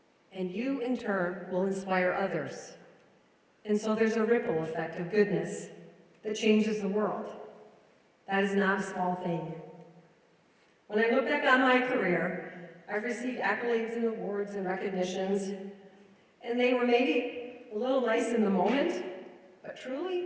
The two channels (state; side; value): identical; both; correlation 1.00